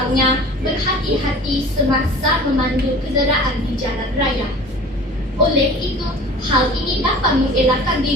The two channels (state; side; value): normal; both; correlation 0.42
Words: berhati-hati semasa memandu kenderaan di jalan raya. Oleh itu, hal ini dapat mengelakkan